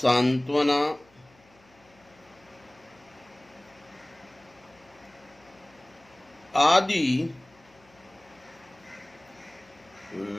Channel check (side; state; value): left; noise; hum, 29 dB below the sound